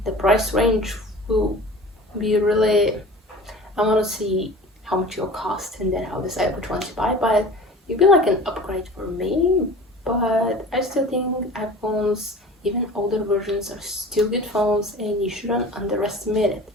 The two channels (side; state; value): both; normal; correlation 0.40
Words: the price range will be really, I want to see how much it'll cost and then I'll decide which one to buy. But it'll be like an upgrade for me, but I still think iPhones, even older versions, are still good phones and you shouldn't underestimate it.